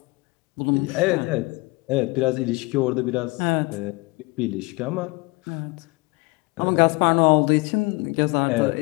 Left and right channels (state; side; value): quieter; right; 25.5 dB